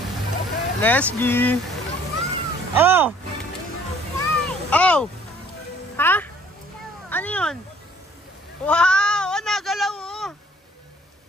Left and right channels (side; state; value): both; normal; correlation 0.57